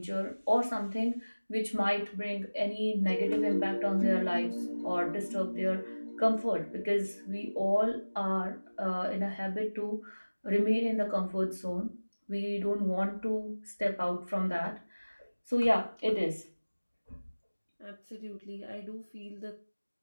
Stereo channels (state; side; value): inverted; both; correlation -1.00